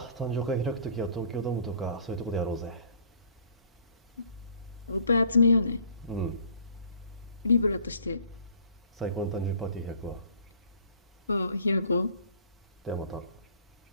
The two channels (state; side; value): inverted; both; correlation -0.53